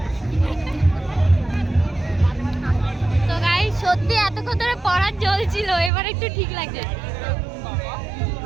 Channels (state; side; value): drops out; left; at 5.9 s